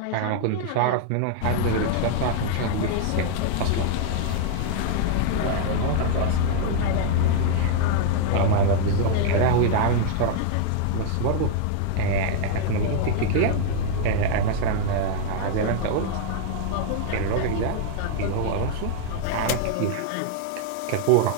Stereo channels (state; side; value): different; both; correlation 0.00